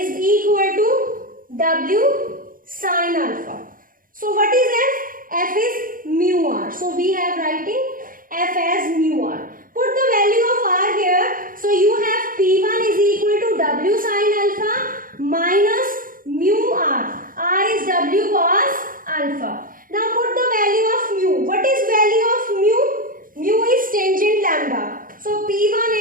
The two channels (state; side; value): late; left; 0.40 ms